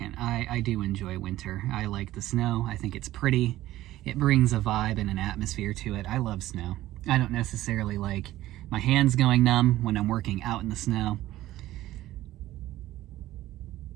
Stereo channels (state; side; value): quieter; left; 15.3 dB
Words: I do enjoy winter. I like the snow. I think it's pretty. It brings a vibe and an atmosphere to it. I love snow. I don't necessarily like my hands going numb when I'm working out in the snow.